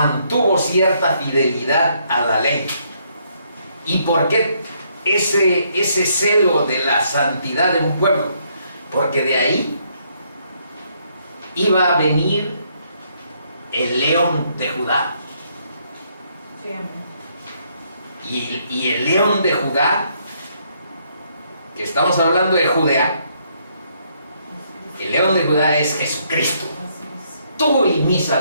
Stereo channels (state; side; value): inverted; both; correlation -0.71